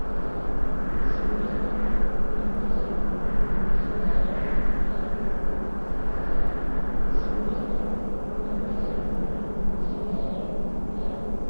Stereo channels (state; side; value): inverted; both; correlation -1.00